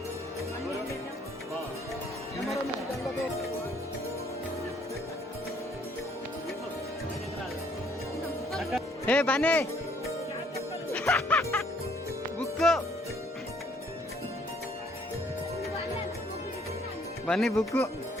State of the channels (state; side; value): normal; both; correlation 0.64